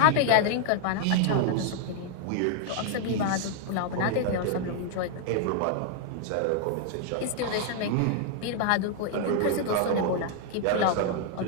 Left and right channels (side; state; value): both; different; correlation 0.00